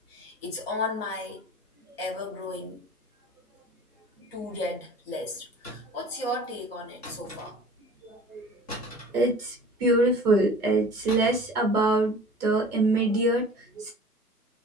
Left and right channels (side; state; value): both; normal; correlation 0.44